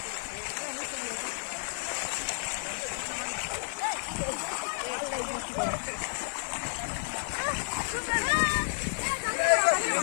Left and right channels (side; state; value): right; silent; 57 dB below the other